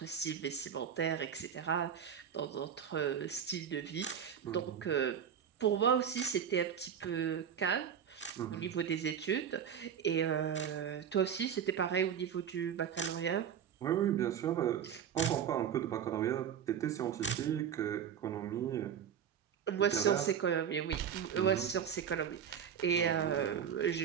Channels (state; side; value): quieter; left; 8.3 dB